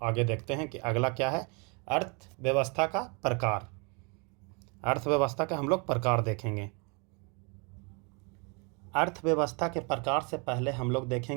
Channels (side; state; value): left; quieter; 33.1 dB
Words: आगे देखते हैं कि अगला क्या है, अर्थव्यवस्था का प्रकार। अर्थव्यवस्था का हम लोग प्रकार देखेंगे। अर्थव्यवस्था के प्रकार से पहले हम लोग